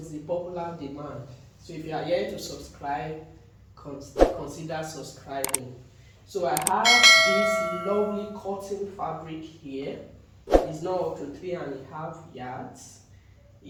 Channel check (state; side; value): identical; both; correlation 1.00